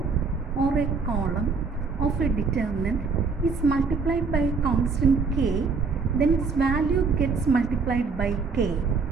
or a column of a determinant is multiplied by a constant k, then its value gets multiplied by k.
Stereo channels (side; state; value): left; quieter; 4.8 dB